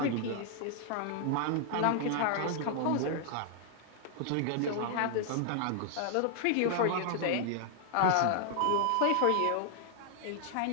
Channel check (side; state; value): both; different; correlation 0.00